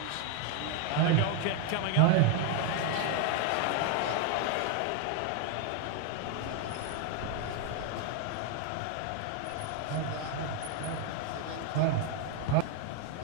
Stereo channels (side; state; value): both; different; correlation 0.01